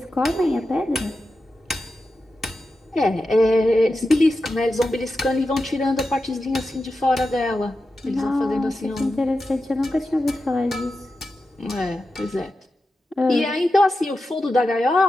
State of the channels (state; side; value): normal; both; correlation 0.91